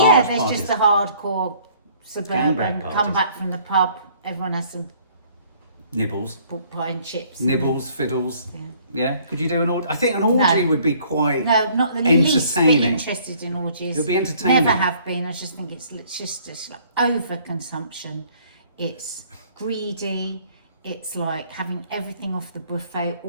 yeah, there's parties. just the hardcore suburban, Gangbang parties. come back from the pub, everyone has some Nibbles. pork pie and chips. Nibbles, fiddles. Yeah. Yeah. Could you do an orgy? I think an orgy No. would be quite No, not the least bit entertaining. interested in orgies. It would be entertaining. Never have been. I just think it's just like overconsumption. It's greedy. It's like having everything off the buffet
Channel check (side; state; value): both; inverted; correlation -0.59